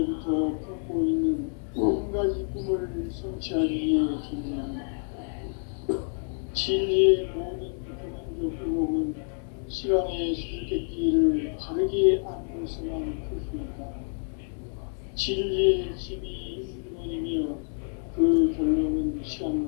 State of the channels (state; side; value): silent; right; 58 dB below the other